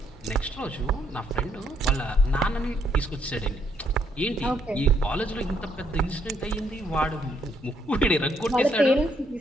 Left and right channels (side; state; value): both; normal; correlation 0.72